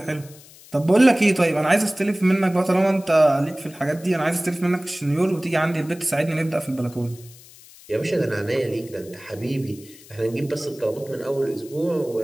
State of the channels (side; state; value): left; noise; hiss, 22 dB below the sound